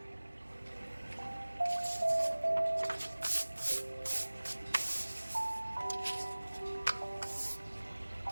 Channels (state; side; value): inverted; both; correlation -1.00